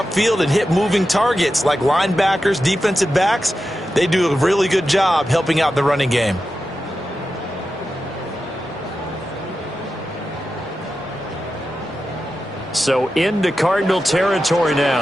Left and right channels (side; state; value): both; normal; correlation 0.91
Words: and hit moving targets like linebackers, defensive backs. They do a really good job helping out the running game. So into Cardinal territory